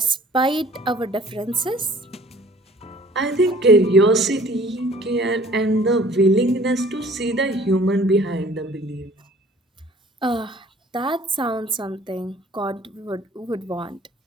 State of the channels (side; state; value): both; normal; correlation 0.52